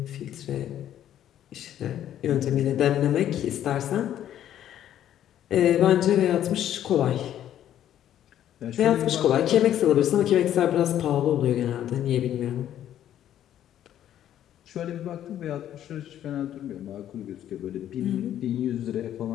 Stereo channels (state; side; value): quieter; right; 11.2 dB